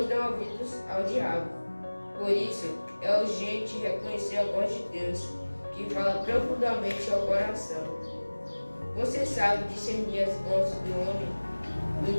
dão ouvidos ao diabo. Por isso, é urgente reconhecer a voz de Deus, que fala profundamente ao coração. Você sabe discernir as vozes do homem,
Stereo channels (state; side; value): inverted; both; correlation -1.00